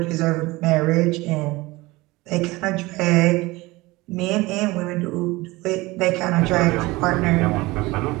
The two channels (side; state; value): left; quieter; 21.2 dB